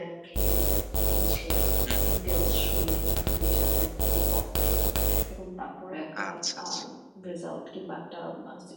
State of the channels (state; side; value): identical; both; correlation 1.00